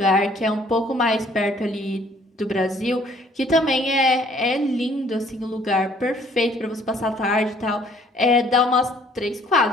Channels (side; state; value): both; normal; correlation 0.60